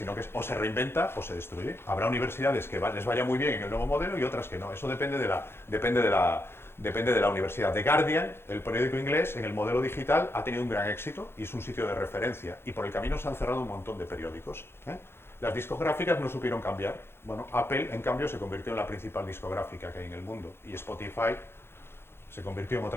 que o se reinventa o se destruye. Habrá universidades que les vaya muy bien en el nuevo modelo y otras que no. Eso depende de la universidad. The Guardian, el periódico inglés, en el modelo digital ha tenido un gran éxito y es un sitio de referencia. Y por el camino se han cerrado un montón de periódicos. Las discográficas no supieron cambiar. Bueno, Apple, en cambio, se convirtió en la principal discográfica que hay en el mundo. Y Spotify se convirtió en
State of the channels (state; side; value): late; right; 0.11 ms